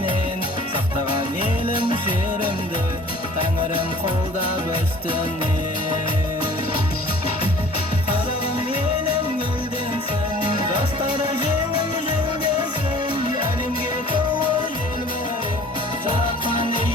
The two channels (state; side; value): normal; both; correlation 0.49